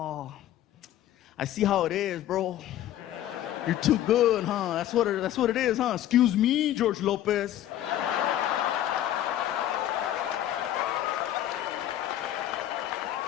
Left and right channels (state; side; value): quieter; right; 12.4 dB